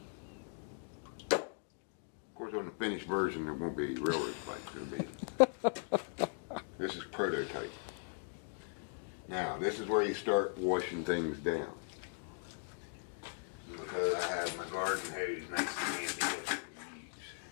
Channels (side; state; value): right; silent; digital silence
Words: Of course, on the finished version, there won't be railroad spikes. It'll be. This is prototype. Now, this is where you start washing things down. Because I have my garden hose nice and handy that I can use.